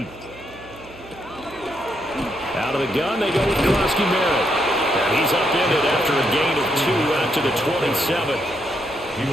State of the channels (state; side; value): noise; right; hum, 20 dB below the sound